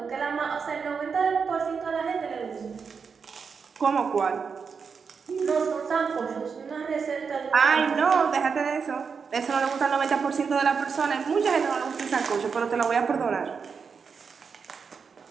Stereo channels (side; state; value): left; quieter; 5.8 dB